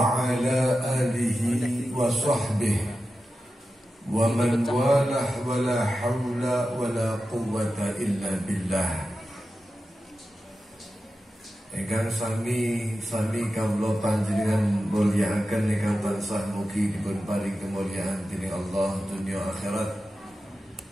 ala alihi wa sahbihi wa man walah wa la hawla wa la quwwata illa billah. Ingkang sami kawula panjenengan mulyakaken ingkang tansah mugi dipun paring kemuliaan dening Allah dunya akhirat.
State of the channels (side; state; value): both; normal; correlation 0.92